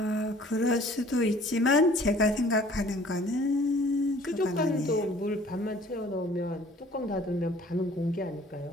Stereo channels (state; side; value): normal; both; correlation 0.53